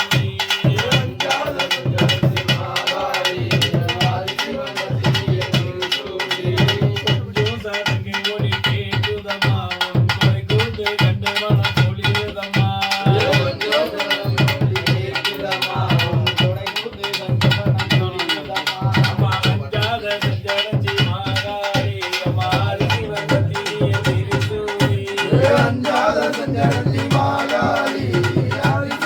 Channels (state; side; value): identical; both; correlation 1.00